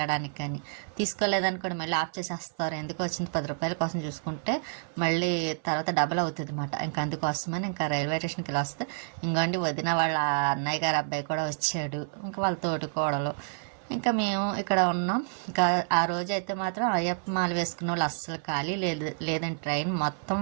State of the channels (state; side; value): silent; left; 59 dB below the other